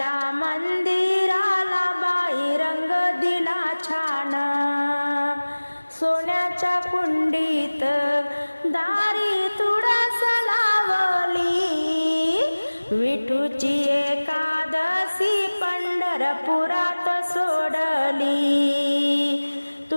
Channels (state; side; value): inverted; both; correlation -1.00